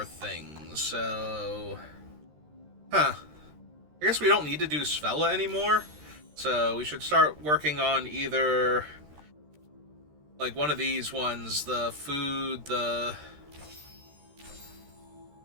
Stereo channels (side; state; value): left; late; 13 ms